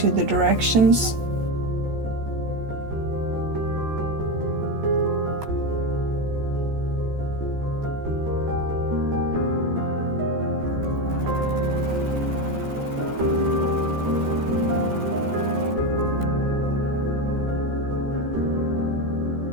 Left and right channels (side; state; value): left; late; 14 ms